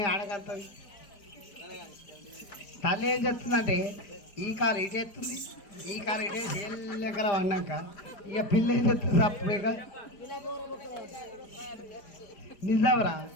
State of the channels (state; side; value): late; right; 5.0 ms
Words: ఆడగలుగుతుంది. తల్లి ఏం చెప్తుందంటే ఈ కాలు ఇటు ఎత్తుంది ఈ కాలు ఇటే చేయలేకల పడినాక ఇక పిల్ల ఏం చెప్తుంది అప్పుడేగా నిజావరా